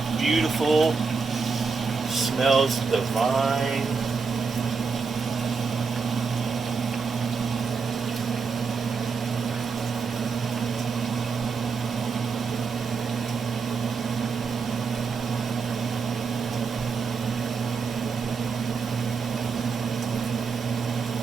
Beautiful. Smells divine.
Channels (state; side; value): quieter; left; 5.1 dB